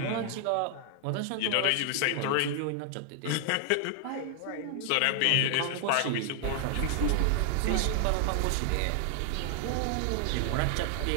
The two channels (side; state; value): both; different; correlation 0.00